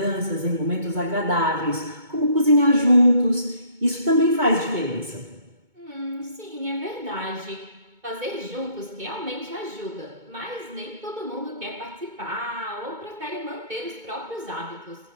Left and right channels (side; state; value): left; late; 2.2 ms